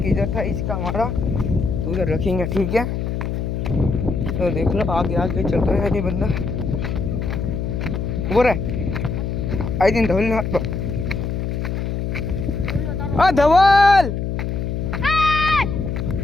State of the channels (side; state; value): left; noise; hum, 2 dB below the sound